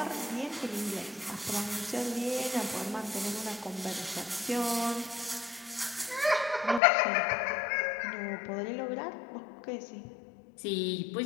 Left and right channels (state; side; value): drops out; right; at 6.8 s